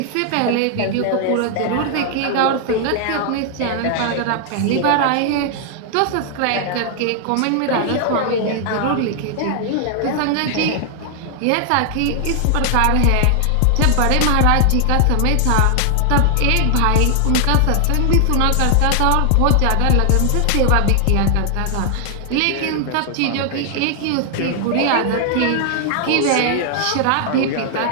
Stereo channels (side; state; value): both; different; correlation 0.00